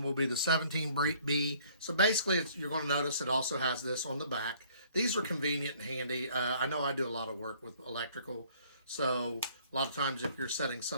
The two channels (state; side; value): inverted; both; correlation -0.58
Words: will be the 17B. So basically, you're going to notice it also has this on the back. These are convenient and handy. I know I do a lot of work with electrical, so a lot of times if you're setting